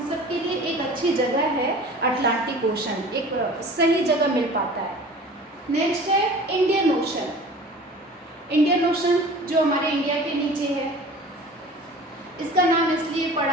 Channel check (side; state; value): both; normal; correlation 0.42